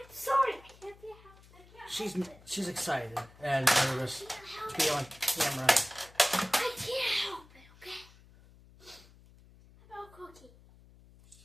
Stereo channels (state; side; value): noise; left; hum, 24 dB below the sound